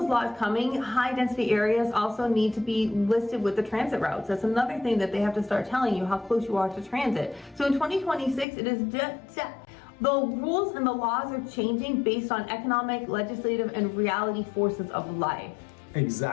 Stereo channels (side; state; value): right; drops out; at 8.5 s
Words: laws coming, high density areas also need to be listed with the transit routes. That's another thing that they have to start telling you, how close you are to transit. So in 2026, it is just the rules and the laws are changing based on economic, legislative, and reality forces of life.